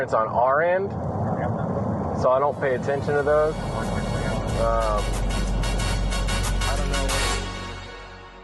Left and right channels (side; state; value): both; identical; correlation 1.00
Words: on our end, so I don't pay attention to those.